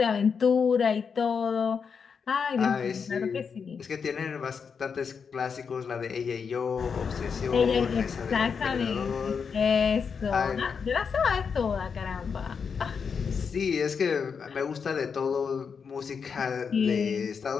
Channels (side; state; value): right; quieter; 6.1 dB